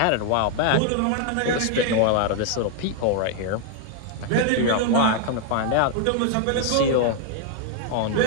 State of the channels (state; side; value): different; both; correlation 0.00